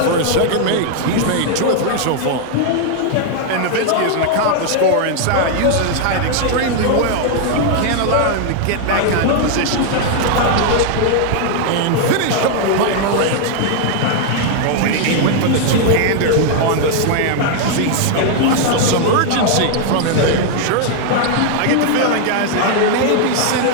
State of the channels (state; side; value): different; both; correlation 0.00